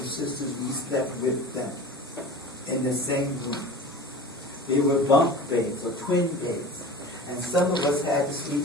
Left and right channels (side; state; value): both; normal; correlation 0.37